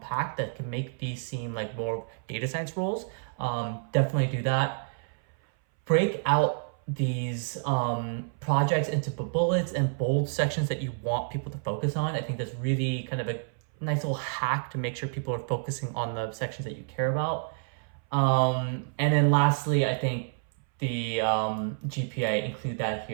that can make these seem like more data science roles. Definitely do that. Break out these projects into bullets and bold sections that you want people to focus on. I think that's really kind of a nice little hack to make sure people are focusing on the sections that you care about. And then lastly, I think the GPA, include that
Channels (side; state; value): left; silent; 59 dB below the other